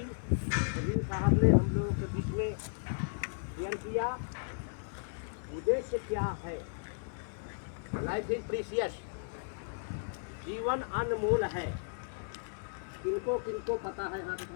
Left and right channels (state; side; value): silent; right; digital silence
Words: नवीन साहब ने हम लोगों के बीच में शेयर किया। उद्देश्य क्या है? लाइफ इज प्रीशियस, जीवन अनमोल है। किनको किनको पता है? हाँ